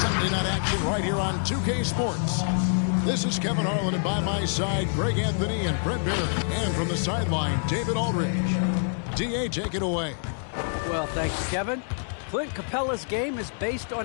night action right here on 2K Sports. This is Kevin Harlan, and by my side, Greg Anthony and Brett Barry. And from the sideline, David Aldridge. DA, take it away. Well, thank you, Kevin. Clint Capella's game is based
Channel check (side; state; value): right; silent; digital silence